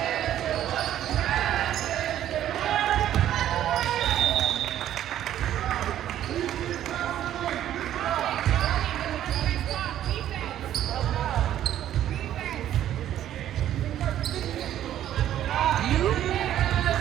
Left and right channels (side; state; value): left; quieter; 11.7 dB